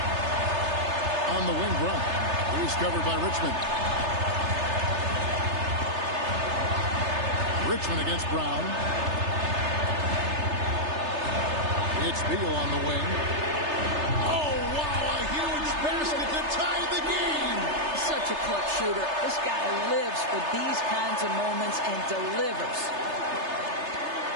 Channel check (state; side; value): late; left; 3.3 ms